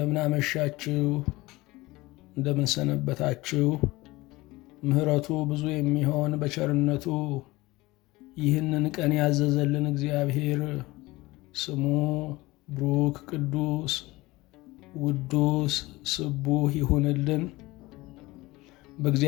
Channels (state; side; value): quieter; right; 20.5 dB